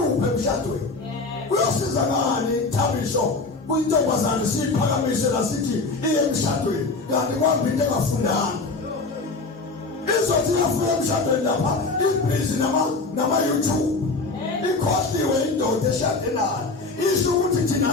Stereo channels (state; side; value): quieter; right; 3.7 dB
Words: emshadweni. Kuyosiza ngani Thabisho kuyintombazana siyiphakamise la sithi iye emshadweni kanti kwambi into engafundanga? Izothi yafuna emshadweni lapha ibhizi nama YouTube ikhosliwe indoda eshade nayo. Isho ukuthi